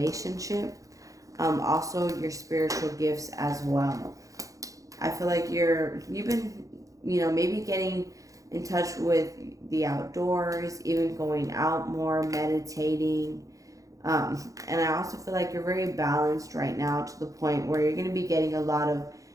Also your spiritual gifts as well. I feel like you've been, maybe getting in touch with the outdoors, even going out more, meditating. And I also feel like you're very balanced right now to the point where you're going to be getting a lot of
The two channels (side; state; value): left; late; 0.16 ms